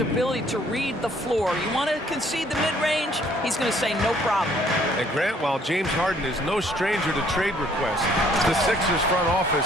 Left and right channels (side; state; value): both; normal; correlation 0.62